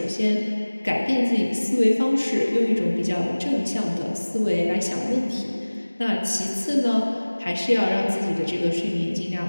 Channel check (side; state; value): both; inverted; correlation -1.00